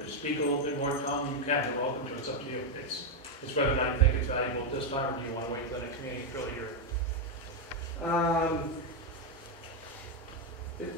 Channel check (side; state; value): both; normal; correlation 0.02